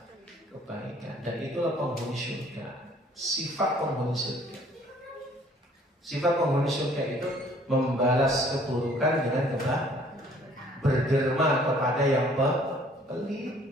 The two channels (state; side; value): normal; both; correlation 0.57